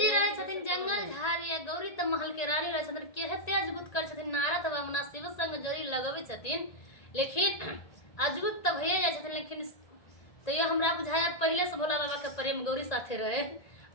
रहे छथिन जंगल झाड़िया, गौरी त महल के रानी रहे छथिन। केहते अजबुत कर छथिन नारद बाबा शिव संग जरी लगवे छथिन, लेकिन अजबुत त भइए जाय छथिन। लेकिन तो ये हमरा बुझाया पहले से भोला बाबा के प्रेम गौरी साथे रहे।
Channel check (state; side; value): late; right; 1.8 ms